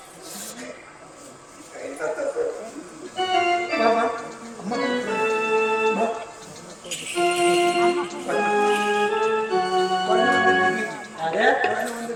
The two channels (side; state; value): both; identical; correlation 1.00